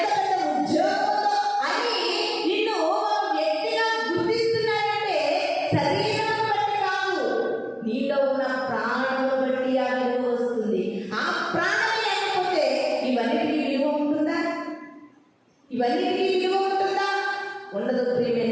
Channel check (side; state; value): both; identical; correlation 1.00